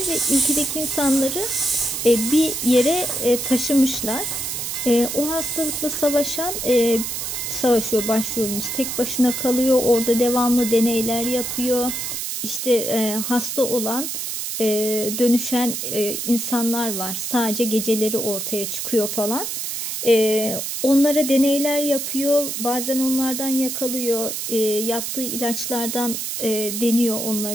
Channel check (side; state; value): right; noise; hiss, 4 dB below the sound